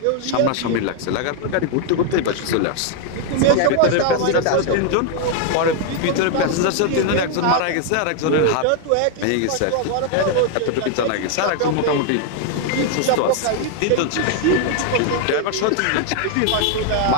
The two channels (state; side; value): different; both; correlation 0.00